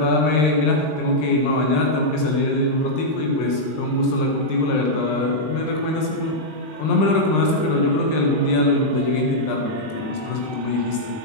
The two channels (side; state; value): right; late; 20 ms